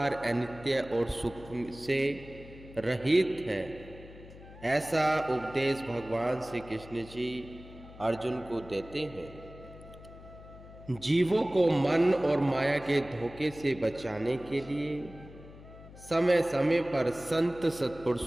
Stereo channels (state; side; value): noise; left; hum, 18 dB below the sound